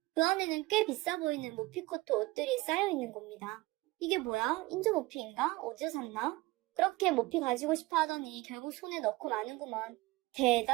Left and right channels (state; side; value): quieter; left; 20.8 dB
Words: 그 안에는 꽤 비싸 보이는 모피코트 옷들이 쌓여있는 겁니다. 이게 뭐야? 인조 모피인가? 어디서 샀나? 그렇게 모피 가지고 싶어 하더니 결국 손에 넣고 마는구먼.